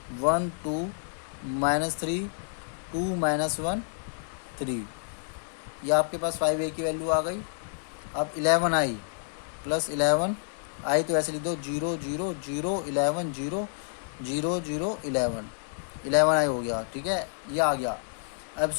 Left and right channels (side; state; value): right; silent; digital silence